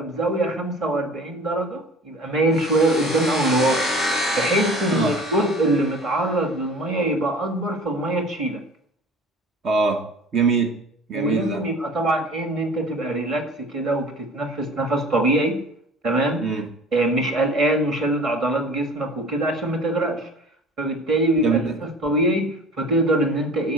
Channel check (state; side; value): normal; both; correlation 0.43